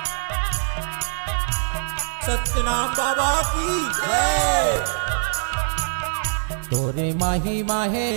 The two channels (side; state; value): left; silent; digital silence